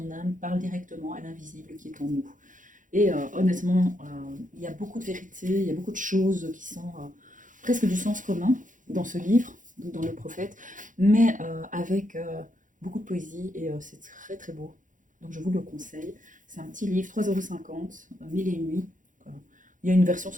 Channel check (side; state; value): left; late; 0.38 ms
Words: âme parle directement à l'invisible qui est en nous. Et honnêtement, il y a beaucoup de vérités, il y a beaucoup de choses qui sont presque du sens commun dans ce livre, dans Le Prophète, mais avec beaucoup de poésie et c'est très très beau. Donc je vous le conseille. C'est un petit livre, 3,50 €, 1001 nuits. Il y a une version